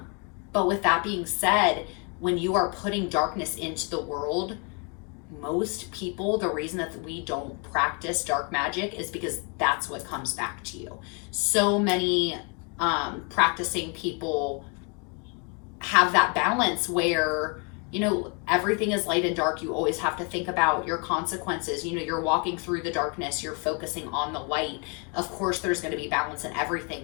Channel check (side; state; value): right; quieter; 35.1 dB